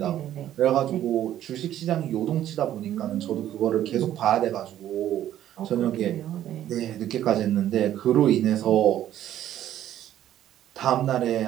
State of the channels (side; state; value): left; quieter; 11.9 dB